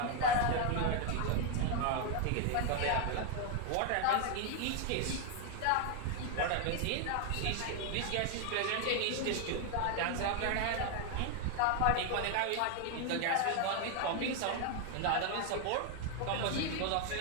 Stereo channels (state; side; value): different; both; correlation 0.01